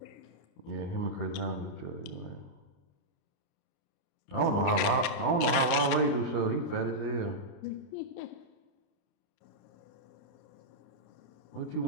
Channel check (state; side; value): late; right; 30 ms